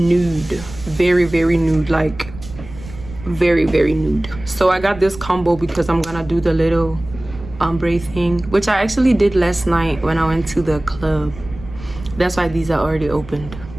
very nude, like very nude. So I got this combo because I'm gonna do the little ombre thing, which I actually did last night when I went to the club. That's why these are already opened.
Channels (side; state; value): right; noise; rumble, 15 dB below the sound